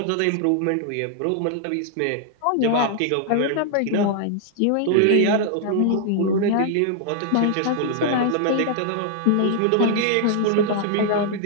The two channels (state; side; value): different; both; correlation 0.00